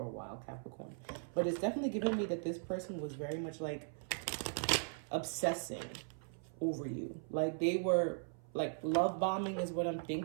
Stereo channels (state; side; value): silent; left; 52 dB below the other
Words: a while, Capricorn. But it's definitely giving me that this person was very much like obsessing over you. Like they were like love bombing is what I'm